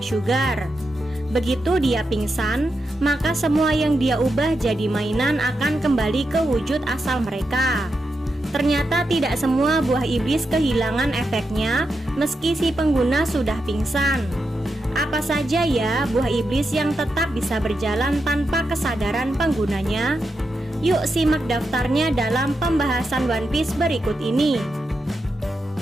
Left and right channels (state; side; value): normal; both; correlation 0.86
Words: Begitu dia pingsan, maka semua yang dia ubah jadi mainan akan kembali ke wujud asal mereka. Ternyata tidak semua buah iblis kehilangan efeknya meski si pengguna sudah pingsan. Apa saja ya buah iblis yang tetap bisa berjalan tanpa kesadaran penggunanya? Yuk simak daftarnya dalam pembahasan One Piece berikut ini.